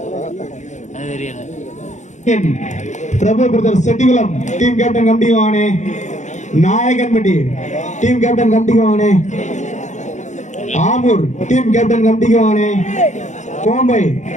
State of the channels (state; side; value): late; right; 0.34 ms